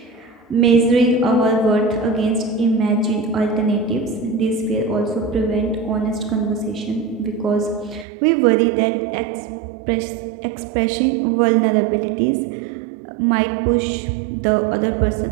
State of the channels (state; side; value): drops out; left; at 8.1 s